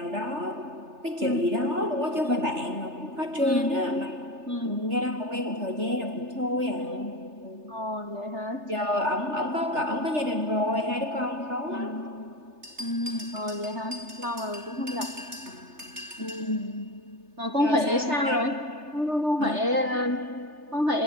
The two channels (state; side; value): late; left; 3.3 ms